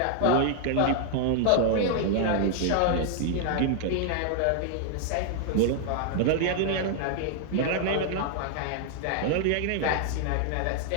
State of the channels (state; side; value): different; both; correlation 0.00